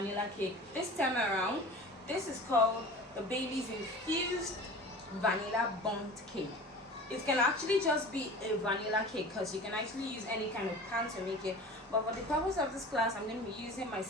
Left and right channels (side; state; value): both; normal; correlation 0.38